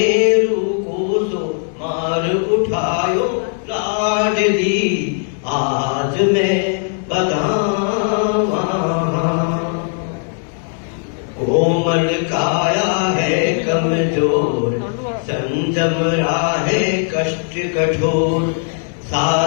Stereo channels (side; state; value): right; silent; 55 dB below the other